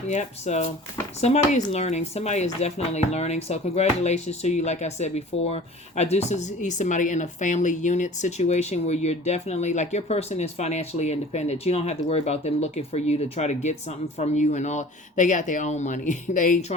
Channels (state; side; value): normal; both; correlation 0.44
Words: Yep, so somebody is learning. Somebody is definitely learning. So congratulations to you. Like I said before, I do see somebody in a family unit situation where you're definitely, like, your person is financially independent. You don't have to worry about them looking for you to try to get something from you and all. They got their own money. They ain't